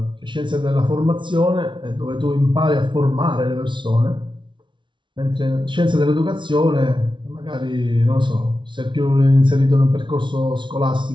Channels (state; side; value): late; left; 0.24 ms